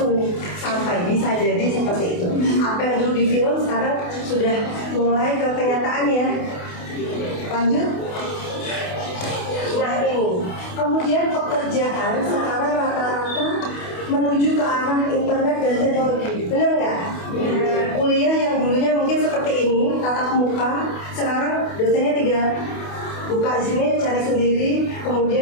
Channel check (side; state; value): right; late; 28 ms